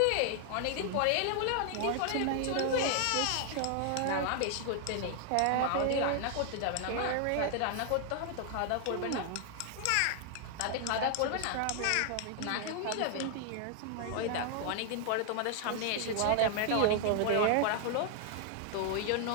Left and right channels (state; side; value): different; both; correlation 0.00